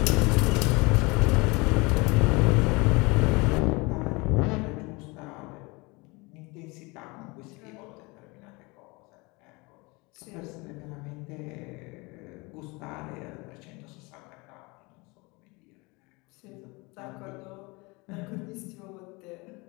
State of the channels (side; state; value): right; quieter; 26.1 dB